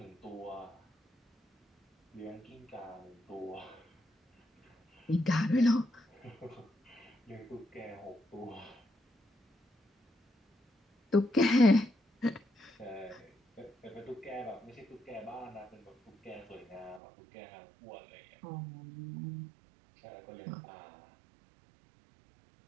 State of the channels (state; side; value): drops out; left; at 17.0 s